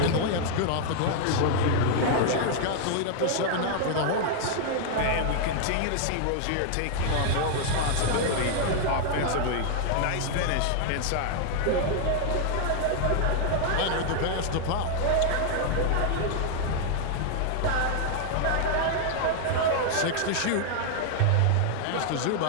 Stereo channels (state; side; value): different; both; correlation 0.00